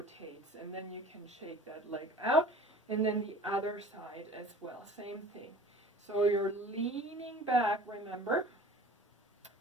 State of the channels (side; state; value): both; normal; correlation 0.43